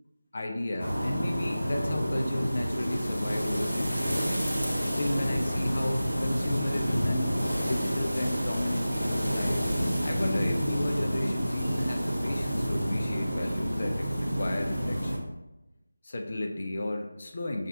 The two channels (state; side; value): inverted; both; correlation -0.96